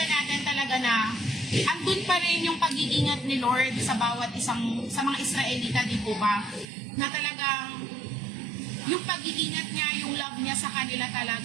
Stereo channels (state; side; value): drops out; left; at 6.7 s